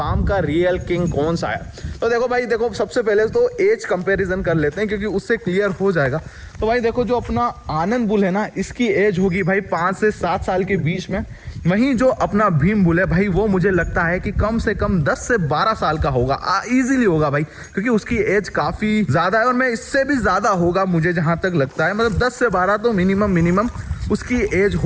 का रियल किंग कौन सा है। तो देखो भाई, देखो सबसे पहले तो एज कंपैरिजन कर लेते हैं, क्योंकि उससे क्लियर हो जाएगा। तो भाई देखो, जो अपना आनंद बुल है ना, इसकी एज होगी भाई 5 से 7 साल के बीच में। वहीं जो अपना भीम बुल है भाई, वो मुझे लगता है कि कम से कम 10 से 12 साल का होगा, इजीली होगा भाई, क्योंकि उसकी एज काफ़ी ज़्यादा है। और मैं इससे भी ज़्यादा होगा मुझे जहाँ तक लगता है, मतलब 10 से 12 तो मिनिमम उसकी एज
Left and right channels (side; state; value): both; identical; correlation 1.00